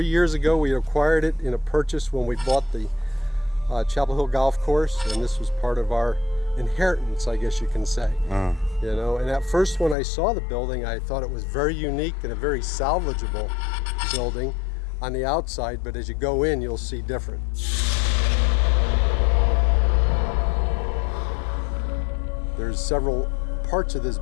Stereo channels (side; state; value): right; drops out; at 10.0 s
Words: years ago, we acquired it in a purchase when we bought the Chapel Hill Golf Course, and this was part of our inheritance, I guess you can say. You know, and at first when I saw the building, I thought it was very unique and a very salvageable building on the outside, but as you go in, you'll see different. There's several parts of this